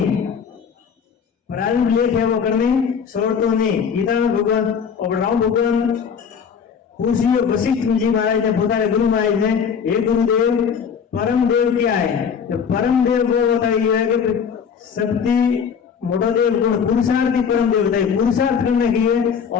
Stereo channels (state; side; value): quieter; right; 6.9 dB